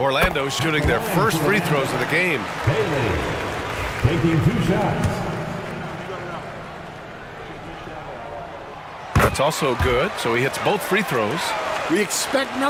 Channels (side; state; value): both; identical; correlation 1.00